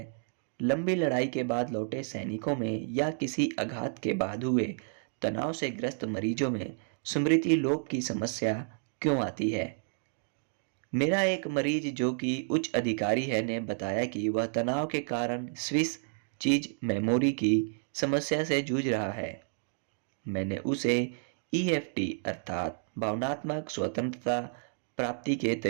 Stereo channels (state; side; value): silent; left; 57 dB below the other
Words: लंबी लड़ाई के बाद लौटे सैनिकों में या किसी आघात के बाद हुए तनाव से ग्रस्त मरीजों में स्मृति लोप की समस्या क्यों आती है। मेरा एक मरीज जो कि उच्च अधिकारी है ने बताया कि वह तनाव के कारण स्विस चीज मेमोरी की समस्या से जूझ रहा है। मैंने उसे ईएफटी अर्थात भावनात्मक स्वतंत्रता प्राप्ति के